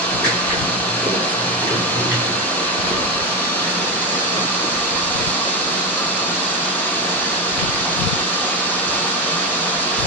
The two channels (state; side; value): normal; both; correlation 0.14